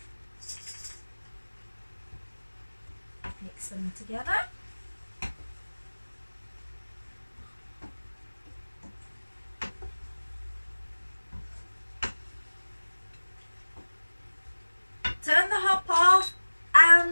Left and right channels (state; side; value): inverted; both; correlation -1.00